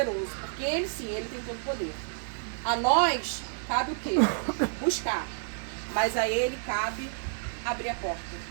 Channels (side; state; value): left; silent; digital silence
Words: porque Ele sim, Ele tem todo o poder. A nós cabe o quê? Buscar. Mas a Ele cabe abrir a porta,